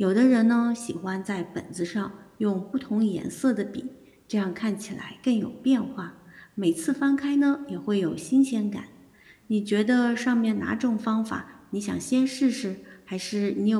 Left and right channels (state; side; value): identical; both; correlation 1.00